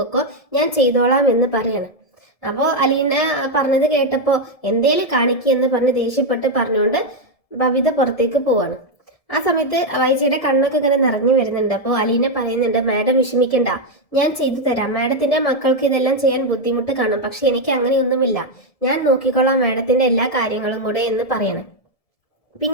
ഞാൻ ചെയ്തോളാം എന്ന് പറയാണ്. അപ്പോൾ അലീന പറഞ്ഞത് കേട്ടപ്പോൾ എന്തേലും കാണിക്കെന്ന് പറഞ്ഞ് ദേഷ്യപ്പെട്ട് പറഞ്ഞുകൊണ്ട് ബബിത പുറത്തേക്ക് പോവാണ്. ആ സമയത്ത് വൈജിയുടെ കണ്ണൊക്കെ ഇങ്ങനെ നിറഞ്ഞു വരുന്നുണ്ട്. അപ്പോൾ അലീന പറയുന്നുണ്ട്, മാഡം വിഷമിക്കണ്ട, ഞാൻ ചെയ്തു തരാം. മാഡത്തിന്റെ മക്കൾക്ക് ഇതെല്ലാം ചെയ്യാൻ ബുദ്ധിമുട്ട് കാണും, പക്ഷെ എനിക്ക് അങ്ങനെയൊന്നുമില്ല, ഞാൻ നോക്കിക്കോളാം മാഡത്തിന്റെ എല്ലാ കാര്യങ്ങളും കൂടെ എന്ന് പറയണം.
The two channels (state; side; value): late; right; 1.7 ms